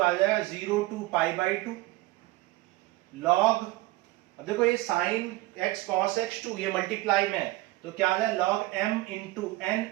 जाएगा 0 टू पाई बाई 2 लॉग, अब देखो ये साइन x cos x 2 ये मल्टीप्लाई में है, तो क्या आ जाए log m into n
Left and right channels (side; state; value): left; quieter; 19.6 dB